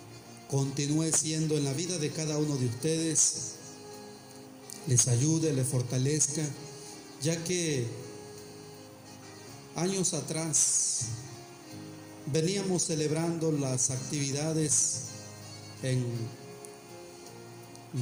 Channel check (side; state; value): both; identical; correlation 1.00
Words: continúe siendo en la vida de cada uno de ustedes, les ayude, les fortalezca, ya que años atrás veníamos celebrando las actividades en